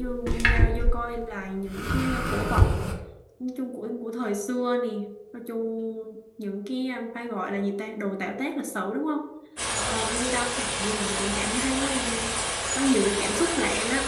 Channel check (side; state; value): both; identical; correlation 1.00